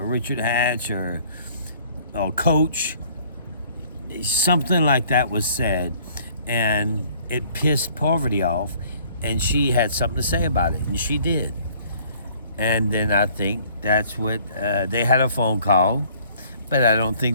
Richard Hatch or Coach. Something like that was said, and it pissed Parvati off, and she had something to say about it, and she did. And then I think that's what they had a phone call, but I don't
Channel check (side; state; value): both; inverted; correlation -0.57